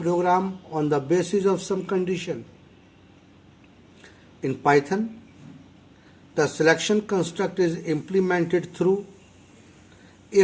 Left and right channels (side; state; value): both; identical; correlation 1.00